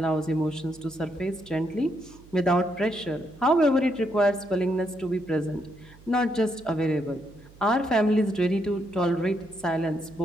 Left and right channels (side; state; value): right; noise; hum, 23 dB below the sound